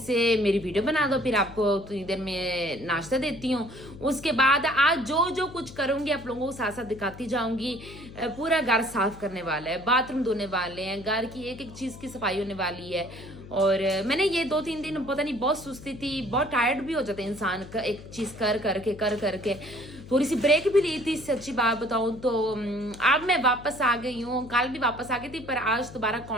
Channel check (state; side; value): noise; left; hum, 16 dB below the sound